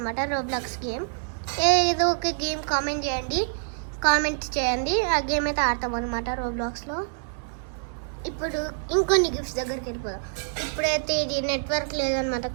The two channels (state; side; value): silent; left; digital silence